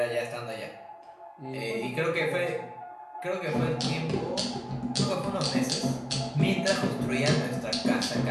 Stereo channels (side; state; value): both; identical; correlation 1.00